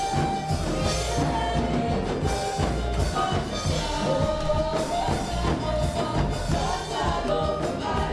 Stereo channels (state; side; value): identical; both; correlation 1.00